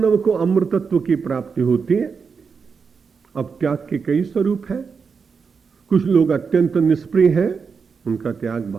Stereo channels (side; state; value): left; quieter; 5.6 dB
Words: को अमृतत्व की प्राप्ति होती है। अब त्याग के कई स्वरूप हैं। कुछ लोग अत्यंत निष्प्रिय हैं, उनका त्याग